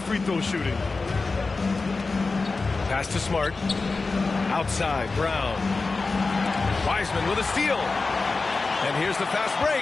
free throw shooting. Pass to Smart. Outside, Brown. Wiseman with a steal. And here's the fast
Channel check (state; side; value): quieter; right; 3.9 dB